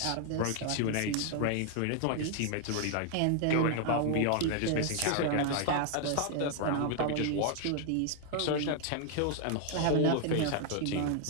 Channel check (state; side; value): different; both; correlation 0.00